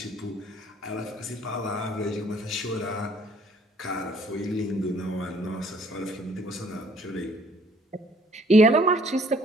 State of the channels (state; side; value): normal; both; correlation 0.60